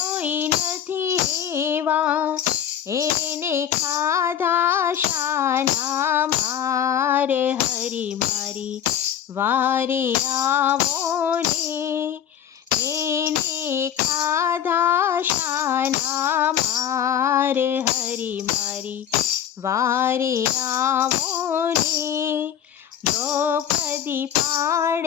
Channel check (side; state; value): right; quieter; 9.7 dB